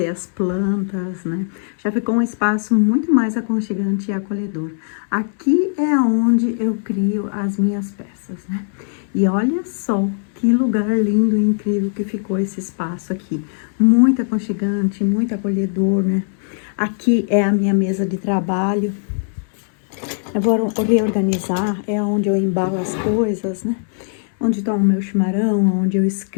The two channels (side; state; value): right; silent; 66 dB below the other